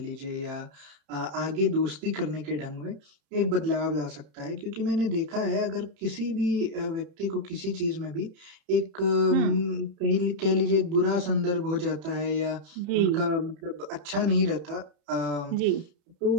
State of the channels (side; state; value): left; late; 30 ms